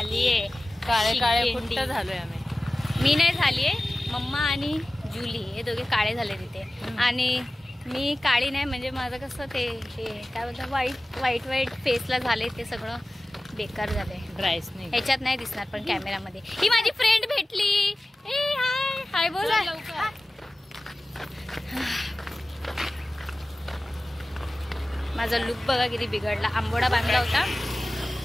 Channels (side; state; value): both; normal; correlation 0.96